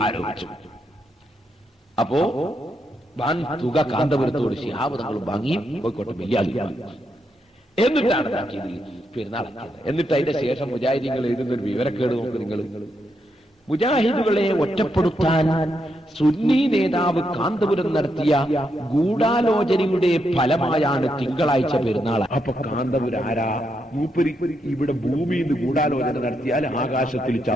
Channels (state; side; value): normal; both; correlation 0.81